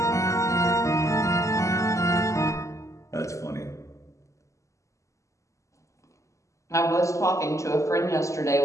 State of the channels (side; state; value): right; late; 0.15 ms